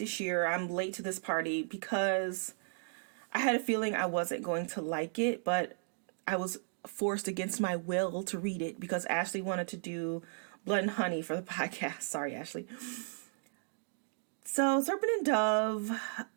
year. I'm late to this party because I had a feeling I wasn't going to like it, but I was forced against my will to read it because Ashley wanted to do Blood and Honey for the podcast. Sorry, Ashley. So Serpent and Dove,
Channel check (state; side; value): silent; left; digital silence